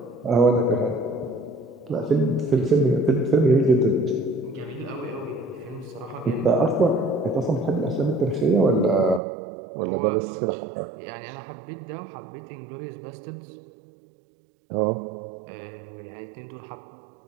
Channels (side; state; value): left; drops out; at 9.2 s